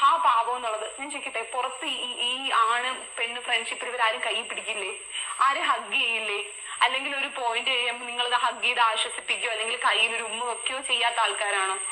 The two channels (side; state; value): both; identical; correlation 1.00